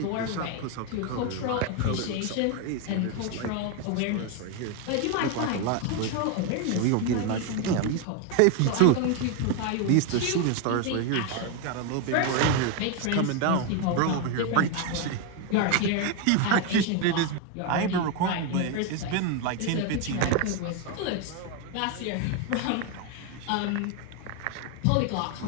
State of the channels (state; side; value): different; both; correlation 0.01